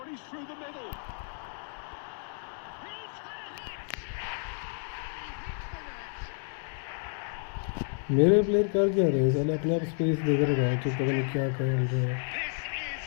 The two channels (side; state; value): right; silent; 57 dB below the other